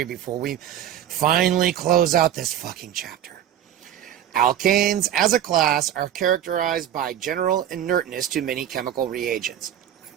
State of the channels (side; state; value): left; quieter; 10.9 dB